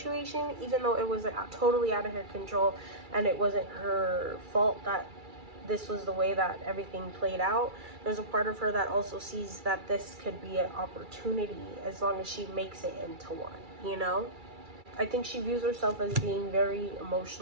even though it was totally out of her control and it wasn't her fault that this was the way that everything played out. There's a part of her that also sees that this could be an opportunity as long as she makes it into one, you know? I think she views herself as being very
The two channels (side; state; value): left; late; 2.3 ms